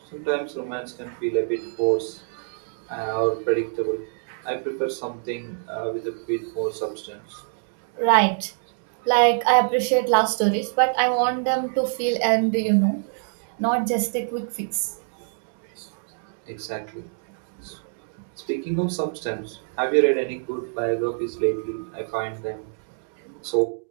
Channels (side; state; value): left; silent; digital silence